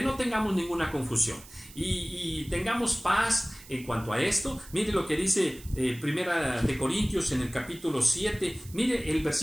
no tengamos ninguna confusión y tengamos paz en cuanto a esto. Mire lo que dice Primera de Corintios en el capítulo 7, mire el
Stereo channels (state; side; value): noise; right; hiss, 19 dB below the sound